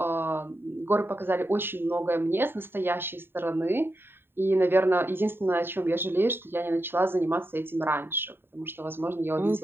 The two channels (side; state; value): left; late; 0.11 ms